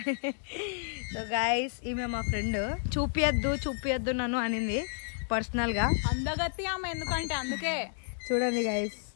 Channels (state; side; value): silent; right; digital silence